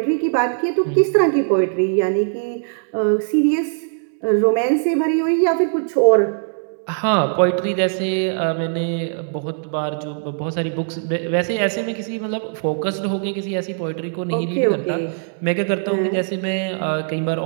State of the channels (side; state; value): left; silent; 65 dB below the other